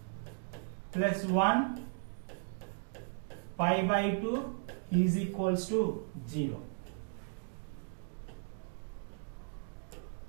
plus 1 pi by 2 is equals to 0.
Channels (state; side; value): silent; left; digital silence